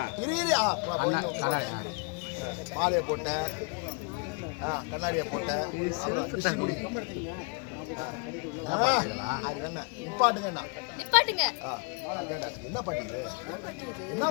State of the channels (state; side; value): quieter; right; 35.4 dB